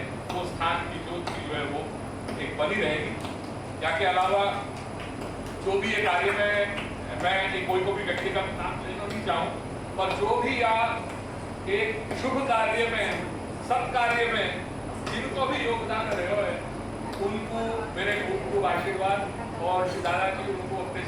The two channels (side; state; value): both; identical; correlation 1.00